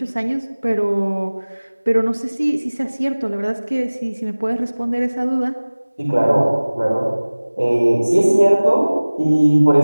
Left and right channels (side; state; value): both; inverted; correlation -1.00